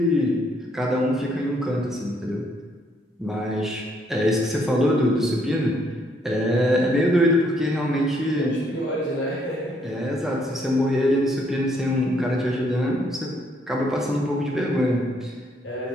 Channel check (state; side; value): normal; both; correlation 0.70